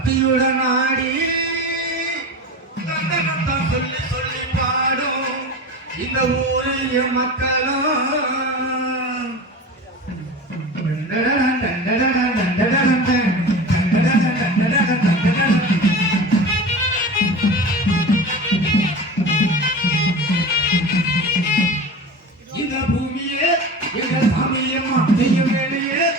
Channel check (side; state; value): both; normal; correlation 0.31